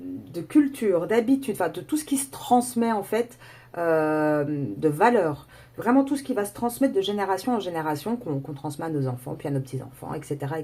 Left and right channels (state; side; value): identical; both; correlation 1.00